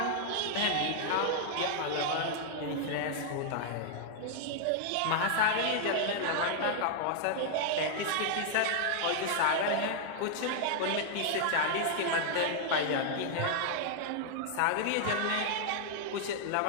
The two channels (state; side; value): different; both; correlation -0.01